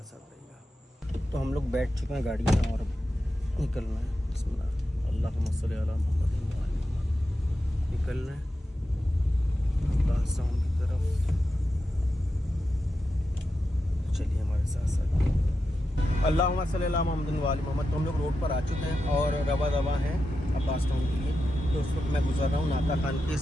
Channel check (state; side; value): normal; both; correlation 0.89